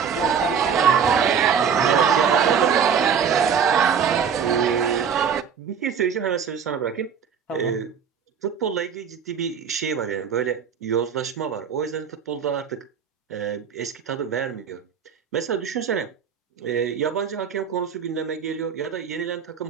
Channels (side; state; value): left; quieter; 7.1 dB